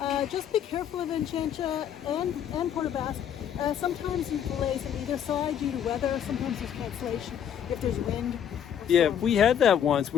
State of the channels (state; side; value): quieter; right; 9.2 dB